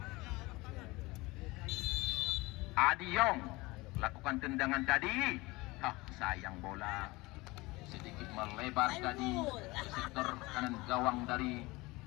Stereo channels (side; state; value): right; quieter; 22.3 dB